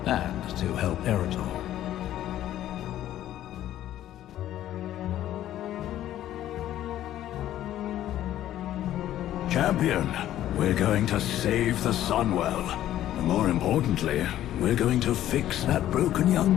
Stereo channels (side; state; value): right; quieter; 12.7 dB